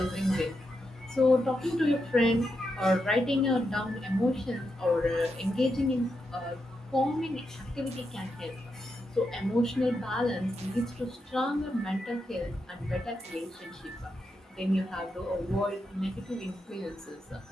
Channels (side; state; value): both; normal; correlation 0.85